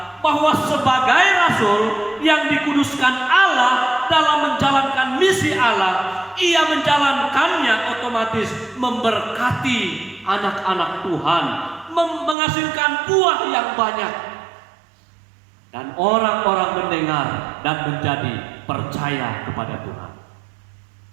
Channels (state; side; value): drops out; left; at 12.4 s